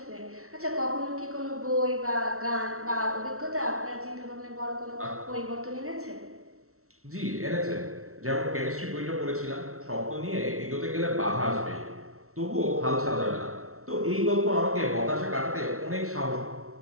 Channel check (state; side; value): late; left; 0.63 ms